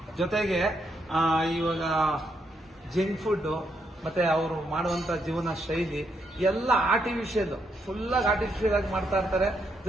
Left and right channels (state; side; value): normal; both; correlation 0.77